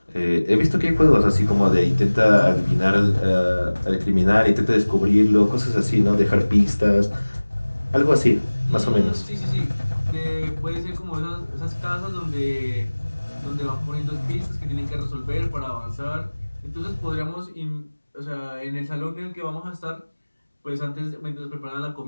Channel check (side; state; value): both; inverted; correlation -1.00